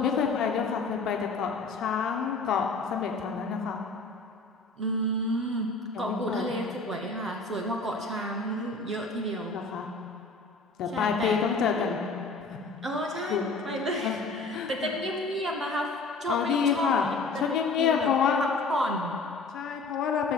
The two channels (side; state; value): right; quieter; 3.8 dB